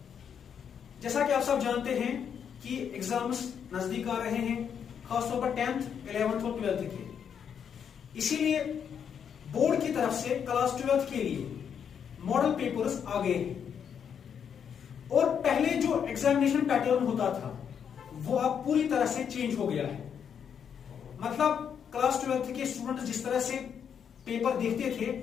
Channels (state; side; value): quieter; right; 7.8 dB